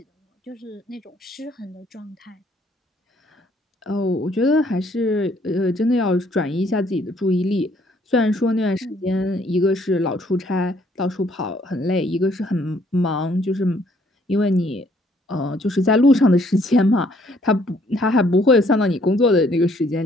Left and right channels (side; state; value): both; normal; correlation 0.65